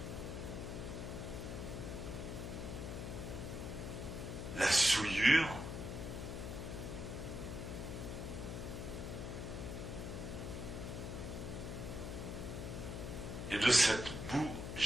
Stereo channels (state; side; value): noise; left; hum, 5 dB below the sound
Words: La souillure. Et de cette boue